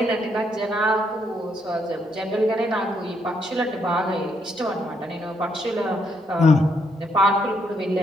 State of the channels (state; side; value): normal; both; correlation 0.75